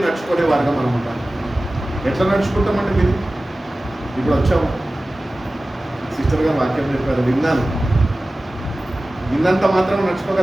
నడుచుకునే వారుగా మనం ఉండాలి. ఎట్లా నడుచుకుంటామంటే విని, ఇప్పుడు వచ్చాము సిస్టర్ గారు వాక్యం చెప్పారు, విన్నాను, విన్నంత మాత్రం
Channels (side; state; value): both; normal; correlation 0.96